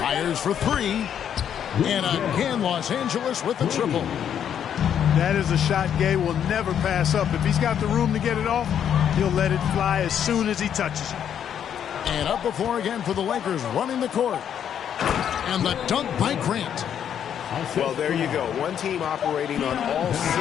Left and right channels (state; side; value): quieter; right; 9.0 dB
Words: for 3. And again, Los Angeles with the triple. That is a shot Gay will never pass up. If he's got the room to get it off, he'll let it fly as soon as he touches it. And up before again for the Lakers, running the court. And the dunk by Grant. Well, there you go. One team operating on all